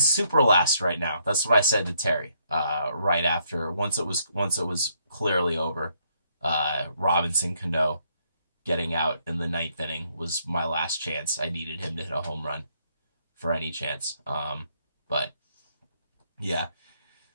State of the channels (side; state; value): both; inverted; correlation -0.72